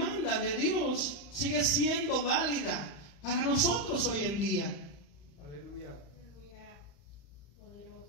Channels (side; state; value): right; late; 35 ms